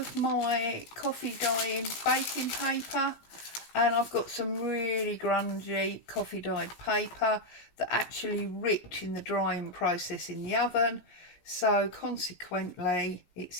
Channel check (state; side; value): late; right; 17 ms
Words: my coffee dyeing baking paper, and I've got some really grungy coffee dyed paper that actually ripped in the drying process in the oven, so consequently it's